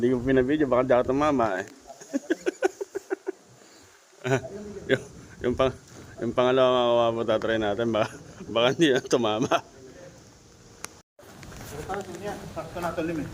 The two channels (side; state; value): both; identical; correlation 1.00